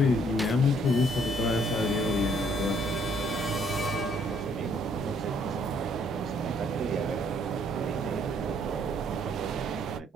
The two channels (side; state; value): both; normal; correlation 0.65